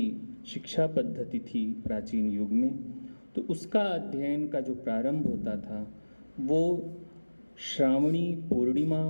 शिक्षा पद्धति थी प्राचीन युग में। तो उसका अध्ययन का जो प्रारंभ होता था वो श्रावणी पूर्णिमा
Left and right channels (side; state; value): both; inverted; correlation -1.00